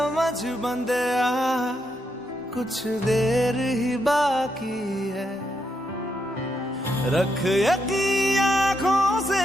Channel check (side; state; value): both; normal; correlation 0.80